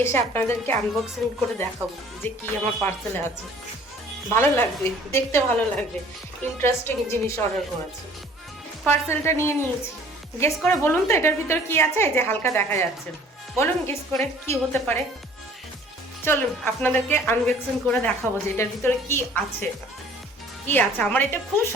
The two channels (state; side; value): normal; both; correlation 0.53